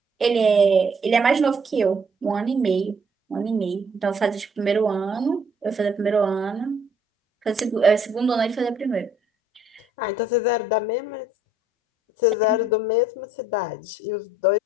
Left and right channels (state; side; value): normal; both; correlation 0.63